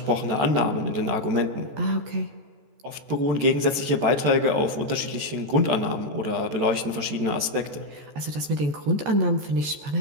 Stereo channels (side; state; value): left; late; 14 ms